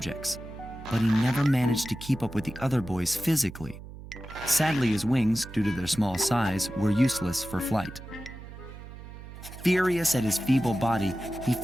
but he never managed to keep up with the other boys physically. Sadly, his wings, due to their small size, were useless for flight. Furious at his feeble body, he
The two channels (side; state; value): right; noise; hum, 14 dB below the sound